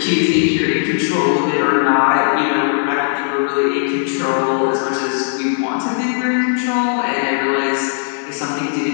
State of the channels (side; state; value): right; silent; digital silence